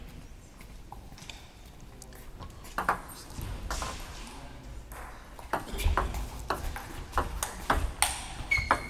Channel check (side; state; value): both; identical; correlation 1.00